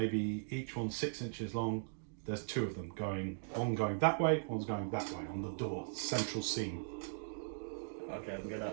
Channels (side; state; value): left; silent; digital silence